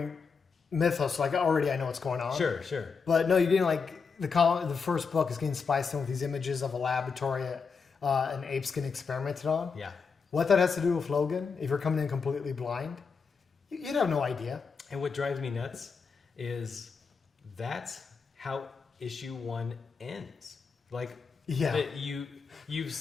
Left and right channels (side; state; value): right; quieter; 5.4 dB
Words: mythos, like already I know what's going on. Sure. But no, you're getting like the first book is getting spiced in with these images of a laboratory an ape's getting experimented on. Yeah. What that has to do with Logan, if you're coming in completely blind, you'd have no idea. And what drives me nuts is that's how issue 1 ends. Like, you've